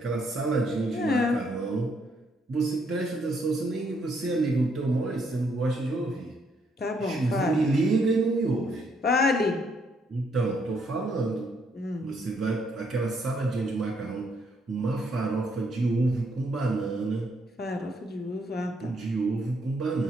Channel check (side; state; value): both; normal; correlation 0.72